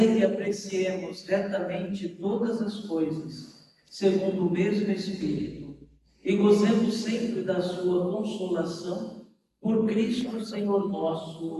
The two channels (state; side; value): identical; both; correlation 1.00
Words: que apreciemos retamente todas as coisas, segundo o mesmo Espírito, e gozemos sempre da sua consolação, por Cristo Senhor